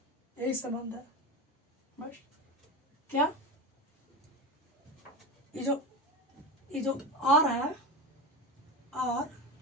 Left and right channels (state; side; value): normal; both; correlation 0.24